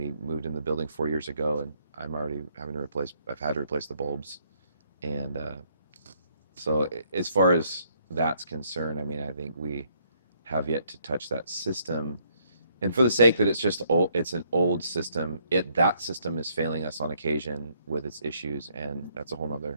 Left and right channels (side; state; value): both; inverted; correlation -0.69